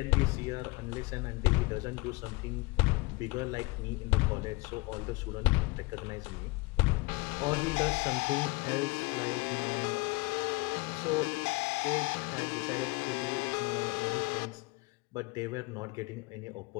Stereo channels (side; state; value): right; quieter; 25.5 dB